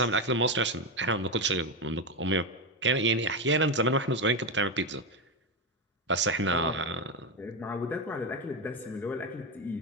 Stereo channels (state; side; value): normal; both; correlation 0.11